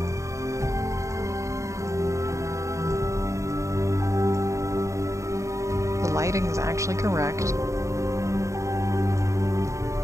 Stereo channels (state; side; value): late; left; 0.15 ms